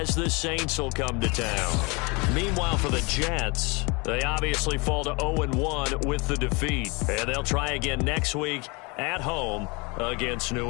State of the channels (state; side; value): quieter; right; 28.4 dB